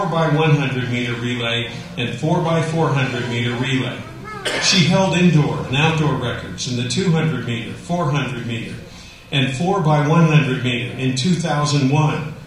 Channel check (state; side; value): identical; both; correlation 1.00